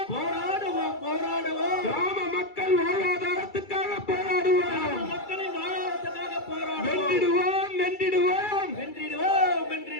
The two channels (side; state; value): right; late; 2.3 ms